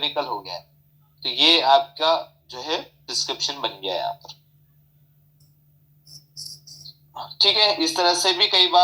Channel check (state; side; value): identical; both; correlation 1.00